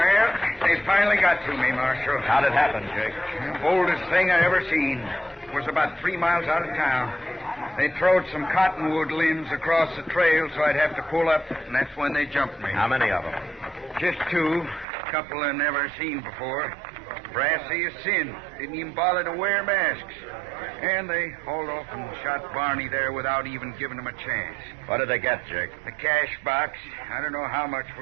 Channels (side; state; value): left; drops out; at 14.9 s